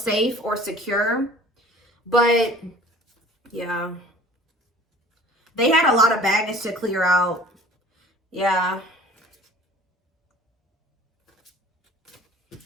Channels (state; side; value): normal; both; correlation 0.47